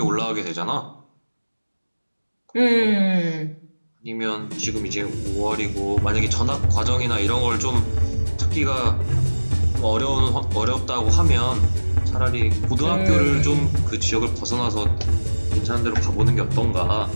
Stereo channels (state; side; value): inverted; both; correlation -1.00